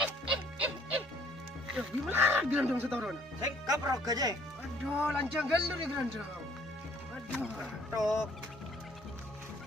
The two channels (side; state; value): both; normal; correlation 0.60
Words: Gimana grandong setoron? Saya kaprok aja. Aduh, lancang galur nih grandong. Aduh. Tok.